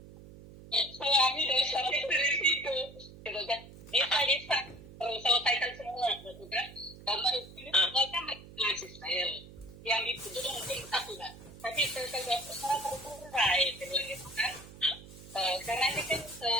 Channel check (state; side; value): noise; right; hum, 17 dB below the sound